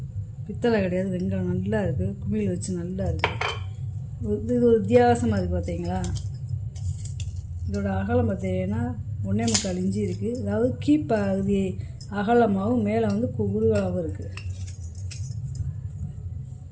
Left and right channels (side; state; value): both; identical; correlation 1.00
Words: பித்தளை கிடையாது, வெங்கலம். நல்லா இருக்குது, குமிழ் வச்சு நல்லா இருக்குது. இது ஒரு வித்தியாசமாக இருக்குது பார்த்தீங்களா. இதோட அகலம் பார்த்தீங்கன்னா 1.25 இன்ச்சு இருக்குது. அதாவது கீப்பகுதி அகலமாகவும் மேலே வந்து குறுகலாகவும் இருக்குது.